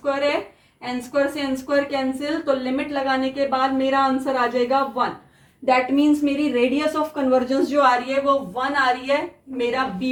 है, एन स्क्वायर से एन स्क्वायर कैंसिल, तो लिमिट लगाने के बाद मेरा आंसर आ जाएगा 1। दैट मीन्स मेरी रेडियस ऑफ कन्वर्जेंस जो आ रही है वो 1 आ रही है, मेरा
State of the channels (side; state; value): both; identical; correlation 1.00